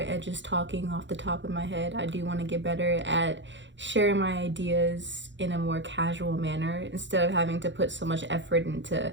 just talking off the top of my head. I do want to get better at sharing my ideas in a more casual manner instead of having to put so much effort into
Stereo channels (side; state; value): left; late; 0.54 ms